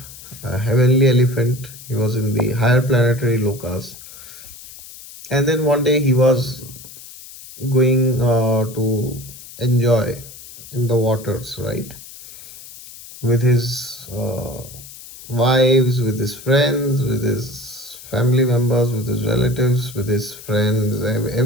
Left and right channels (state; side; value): noise; left; hiss, 17 dB below the sound